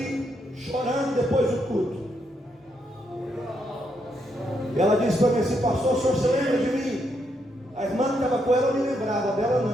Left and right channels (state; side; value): normal; both; correlation 0.78